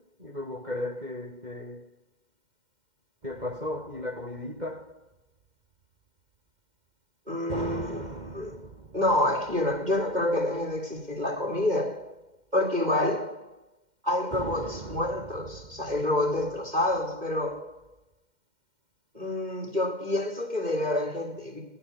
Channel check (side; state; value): left; late; 2.1 ms